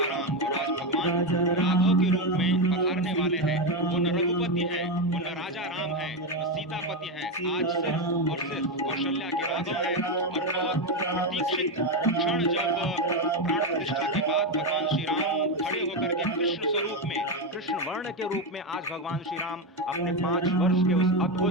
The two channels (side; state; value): both; normal; correlation 0.10